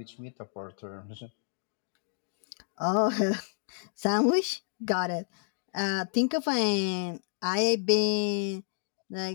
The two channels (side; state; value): right; silent; digital silence